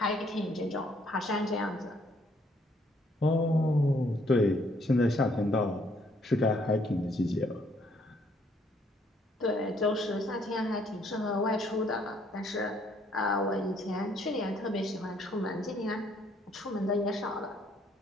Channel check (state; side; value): normal; both; correlation 0.66